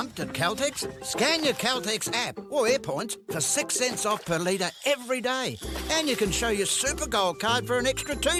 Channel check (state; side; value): identical; both; correlation 1.00